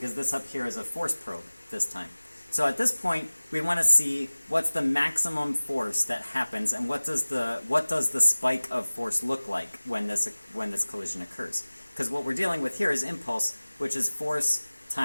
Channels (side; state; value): both; inverted; correlation -1.00